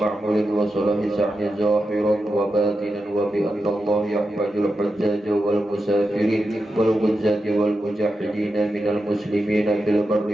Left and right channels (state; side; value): normal; both; correlation 0.89